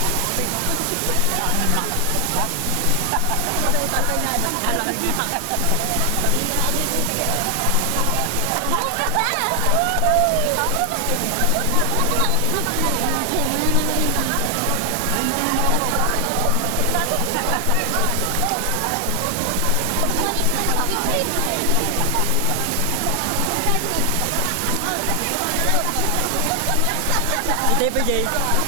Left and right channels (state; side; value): different; both; correlation 0.00